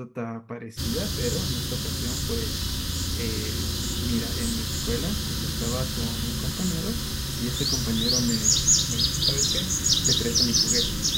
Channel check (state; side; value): identical; both; correlation 1.00